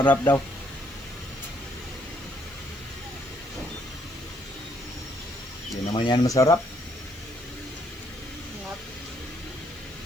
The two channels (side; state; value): right; noise; hiss, 25 dB below the sound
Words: daw. Hindi naman yan masarap Sarap.